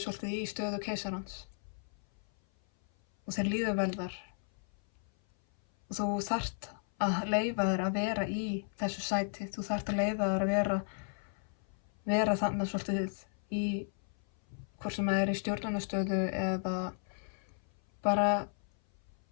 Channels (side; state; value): right; silent; 55 dB below the other